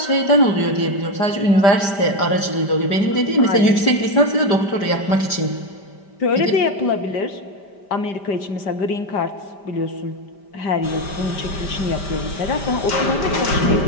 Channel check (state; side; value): late; right; 5.1 ms